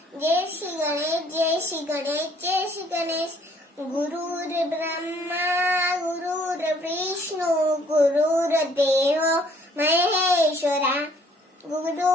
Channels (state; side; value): normal; both; correlation 0.61